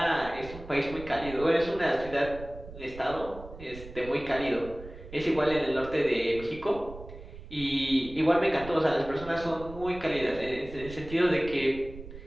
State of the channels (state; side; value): noise; right; rumble, 15 dB below the sound